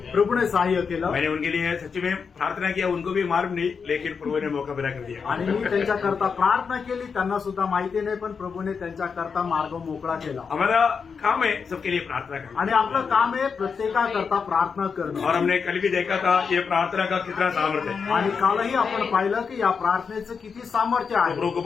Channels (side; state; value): right; quieter; 5.8 dB